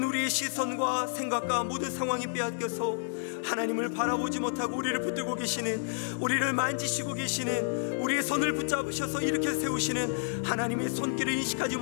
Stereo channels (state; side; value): silent; right; digital silence